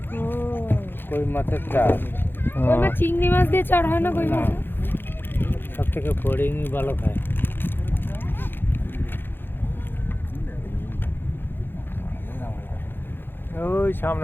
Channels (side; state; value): right; late; 0.10 ms